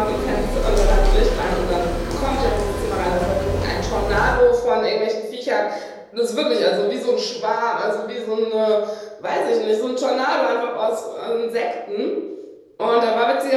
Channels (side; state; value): both; identical; correlation 1.00